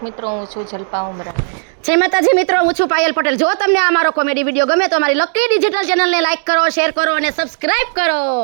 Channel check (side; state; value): left; silent; digital silence